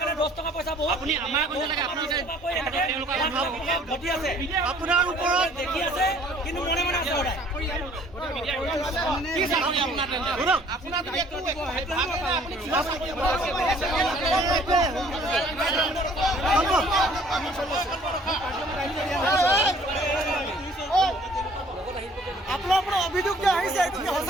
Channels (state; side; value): normal; both; correlation 0.56